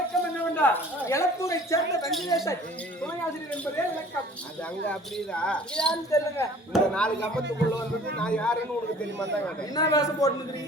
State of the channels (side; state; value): both; normal; correlation 0.49